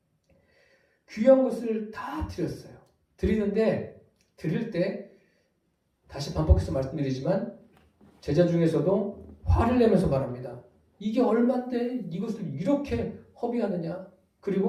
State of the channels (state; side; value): identical; both; correlation 1.00